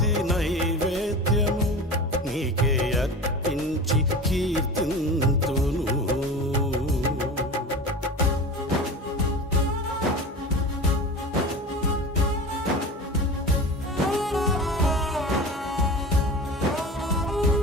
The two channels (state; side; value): normal; both; correlation 0.33